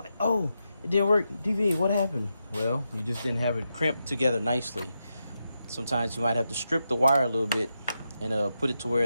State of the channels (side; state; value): both; inverted; correlation -0.86